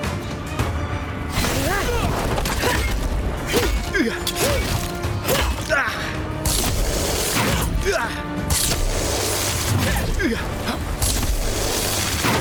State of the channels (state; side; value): identical; both; correlation 1.00